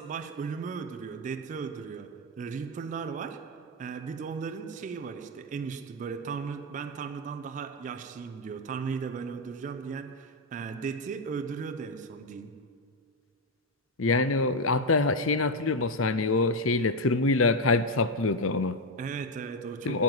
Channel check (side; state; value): both; normal; correlation 0.05